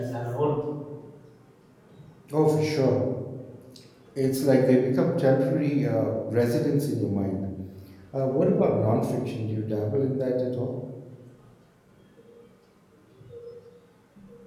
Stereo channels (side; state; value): both; identical; correlation 1.00